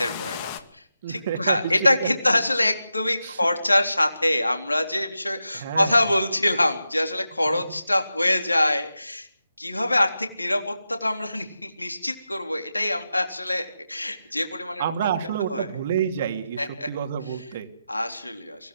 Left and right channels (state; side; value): inverted; both; correlation -0.89